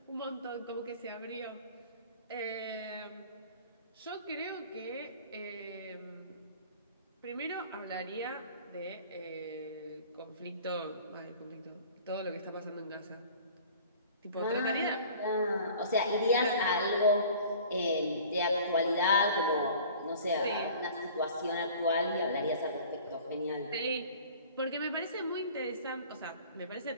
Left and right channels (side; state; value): both; inverted; correlation -0.46